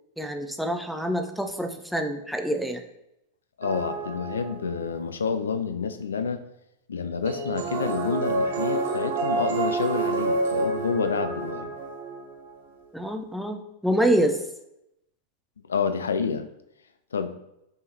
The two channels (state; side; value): normal; both; correlation -0.05